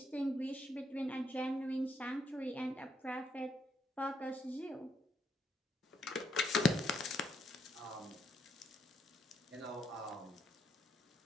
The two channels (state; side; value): normal; both; correlation 0.75